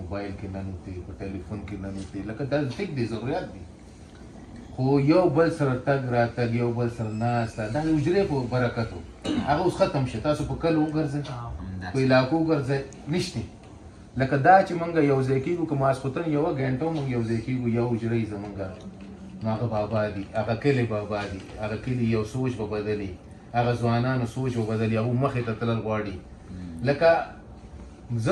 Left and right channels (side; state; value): both; identical; correlation 1.00